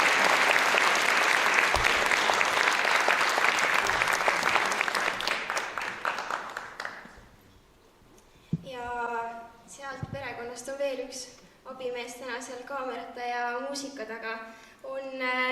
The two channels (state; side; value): identical; both; correlation 1.00